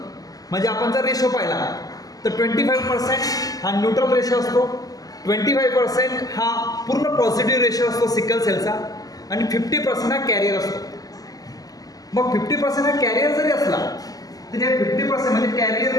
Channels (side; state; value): right; late; 0.17 ms